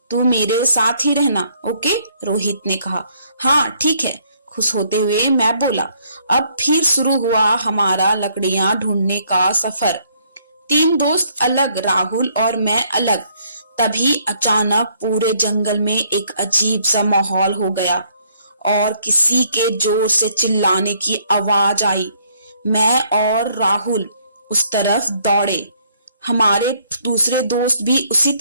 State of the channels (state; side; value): inverted; both; correlation -0.66